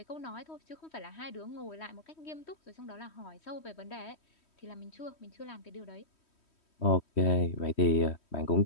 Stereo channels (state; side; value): late; right; 3.1 ms